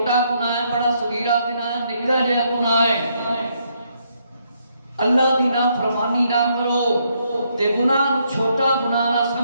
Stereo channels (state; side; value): inverted; both; correlation -0.74